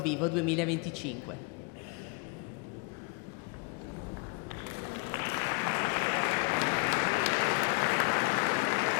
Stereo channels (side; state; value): right; quieter; 29.6 dB